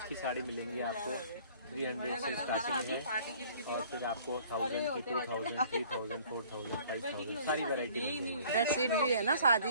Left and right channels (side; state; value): both; inverted; correlation -0.54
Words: की साड़ी मिलेंगी आपको। 300 से स्टार्टिंग है और फिर आपको 1000 की, 2000, 3000, 4000, 5000 सारी वैरायटी मिलेगी। बेडशीट भी है ना